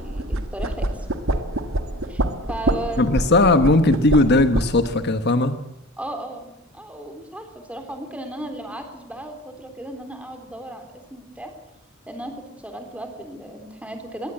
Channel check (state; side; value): normal; both; correlation 0.40